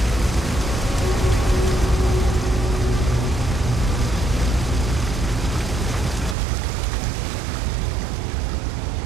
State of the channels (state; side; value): drops out; left; at 6.4 s